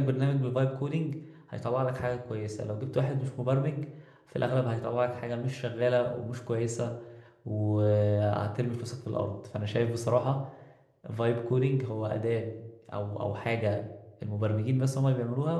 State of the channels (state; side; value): identical; both; correlation 1.00